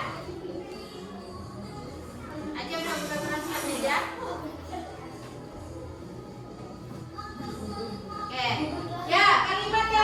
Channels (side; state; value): both; identical; correlation 1.00